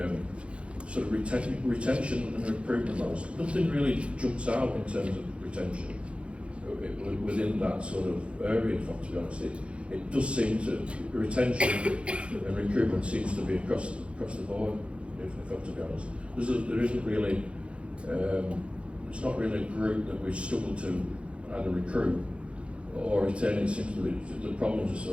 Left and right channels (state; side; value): late; left; 0.060 ms